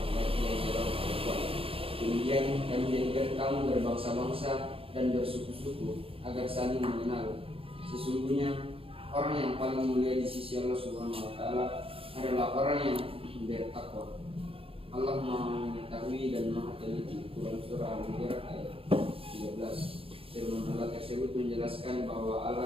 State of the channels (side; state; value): left; late; 0.27 ms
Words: dan seorang perempuan. Kemudian kami jadikan kamu berbangsa-bangsa dan bersuku-suku agar saling mengenal. Sesungguhnya orang yang paling mulia di sisi Allah Subhanahu wa taala adalah orang yang bertakwa. Allah Maha mengetahui dan Maha teliti. Quran surah Al-Hujurat ayat 13. Firman Allah tersebut menjelaskan bahwa